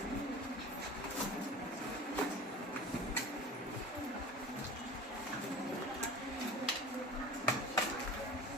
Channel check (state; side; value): normal; both; correlation 0.37